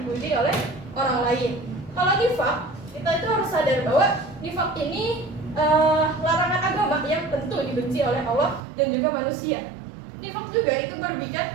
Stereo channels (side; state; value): left; drops out; at 8.6 s